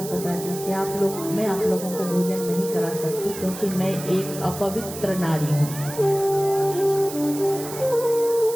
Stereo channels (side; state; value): right; noise; hiss, 11 dB below the sound